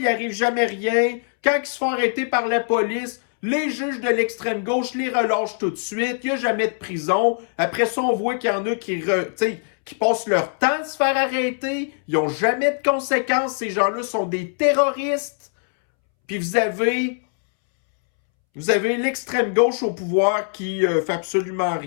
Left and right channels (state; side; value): silent; right; 64 dB below the other